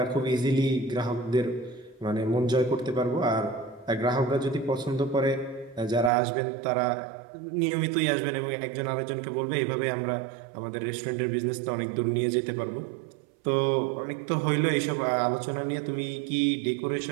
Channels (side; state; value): left; drops out; at 6.1 s